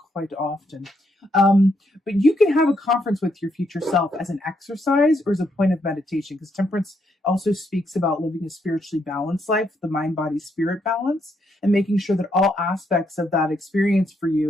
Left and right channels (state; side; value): normal; both; correlation 0.76